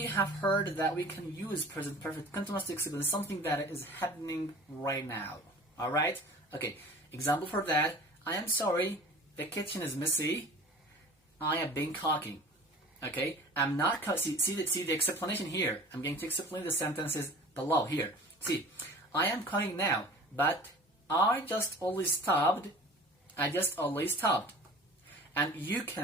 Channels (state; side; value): normal; both; correlation 0.42